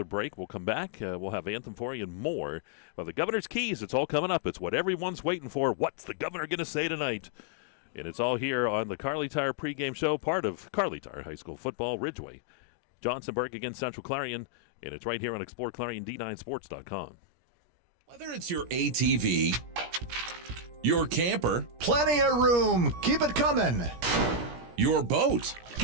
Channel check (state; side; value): late; left; 17 ms